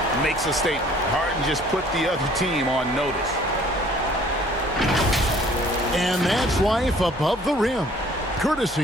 makes a statement. Harden just put the other team on notice. And that's life above the rim,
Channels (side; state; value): both; normal; correlation 0.55